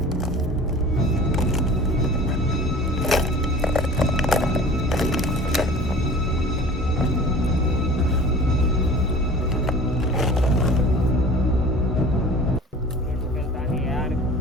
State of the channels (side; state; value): both; normal; correlation 0.43